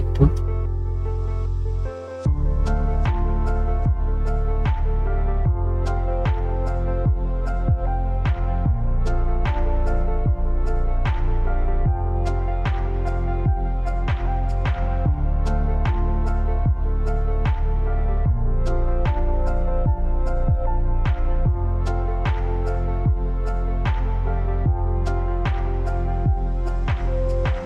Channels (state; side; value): identical; both; correlation 1.00